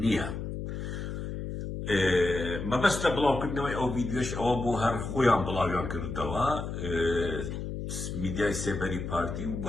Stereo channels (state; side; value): noise; left; hum, 5 dB below the sound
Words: نییە. مەبەستە بڵاوکردنەوەی ئەو ڤیدیۆش ئەوە بۆ هەر خۆیان بڵاویان کردەوە میدیای سێبەری پارتی و